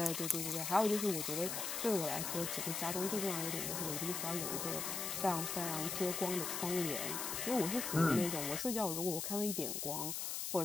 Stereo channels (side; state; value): left; noise; hiss, 2 dB below the sound